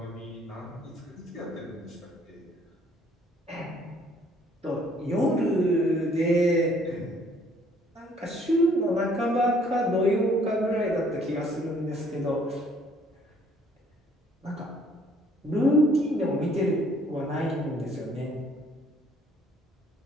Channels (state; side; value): normal; both; correlation 0.61